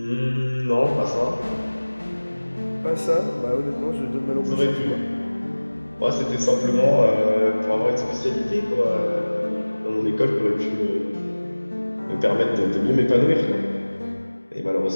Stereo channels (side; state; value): both; inverted; correlation -1.00